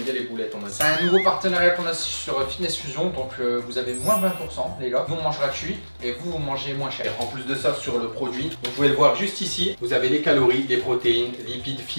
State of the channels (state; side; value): inverted; both; correlation -1.00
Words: bien les boulettes, on a dit. C'est un nouveau partenariat qu'on a sur Fitness Fusion. Donc, vous avez moins 20%, les gars. Nous, on mange gratuit et vous mangez moins cher. En plus de ça, sur le produit, vous pouvez le voir juste ici. Vous avez les calories, les protéines, lipides,